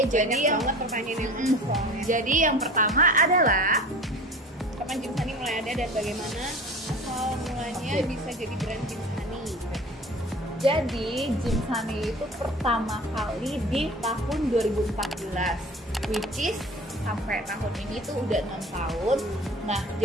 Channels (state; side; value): normal; both; correlation 0.41